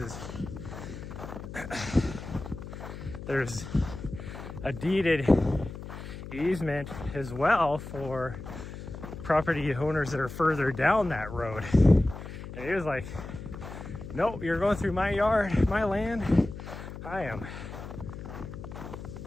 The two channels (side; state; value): left; noise; hum, 10 dB below the sound